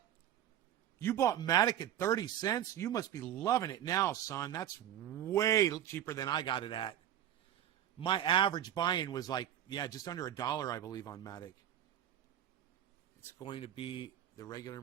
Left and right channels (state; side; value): quieter; left; 11.2 dB